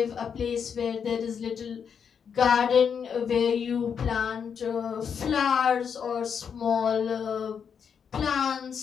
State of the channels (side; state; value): right; quieter; 7.1 dB